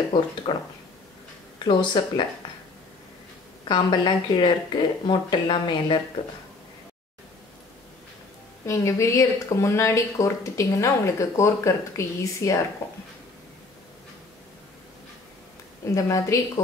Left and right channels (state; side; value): quieter; right; 3.5 dB